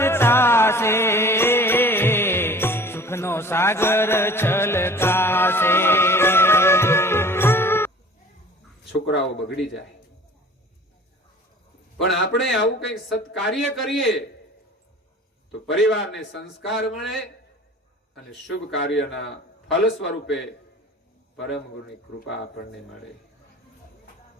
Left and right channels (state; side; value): normal; both; correlation 0.46